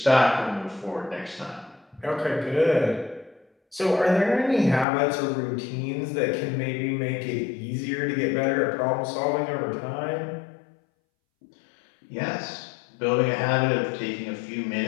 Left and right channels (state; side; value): drops out; right; at 4.9 s